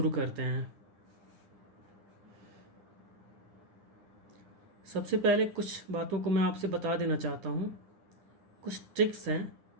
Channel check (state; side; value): late; left; 10 ms